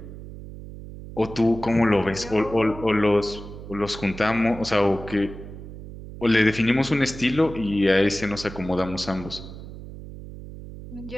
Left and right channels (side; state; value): right; noise; hum, 13 dB below the sound